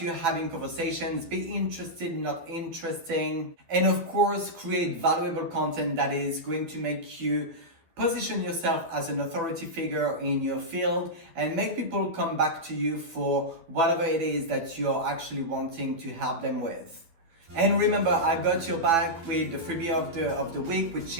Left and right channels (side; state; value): left; late; 12 ms